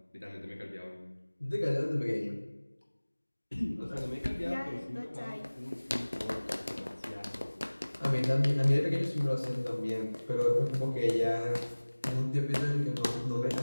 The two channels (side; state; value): both; inverted; correlation -1.00